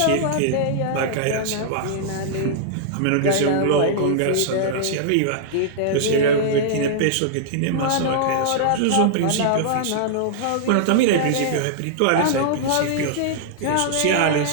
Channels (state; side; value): different; both; correlation -0.02